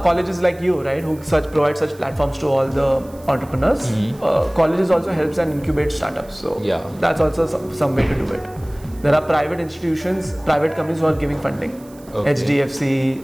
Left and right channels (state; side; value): noise; right; hiss, 25 dB below the sound